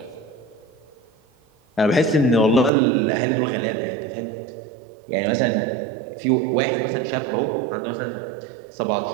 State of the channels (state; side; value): drops out; left; at 2.7 s